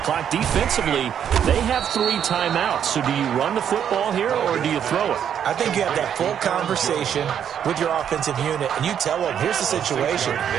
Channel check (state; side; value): quieter; left; 8.9 dB